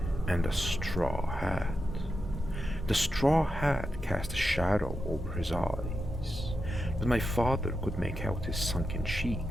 and a straw hat. The straw hat cast a shadow over his eyes, but my father could make out his sunken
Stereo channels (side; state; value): both; normal; correlation 0.88